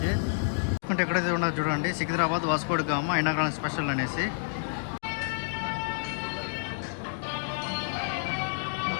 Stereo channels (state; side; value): silent; right; digital silence